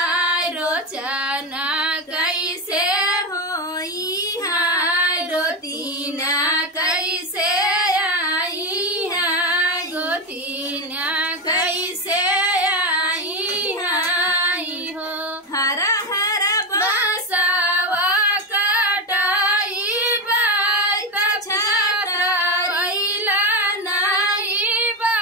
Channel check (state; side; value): normal; both; correlation 0.13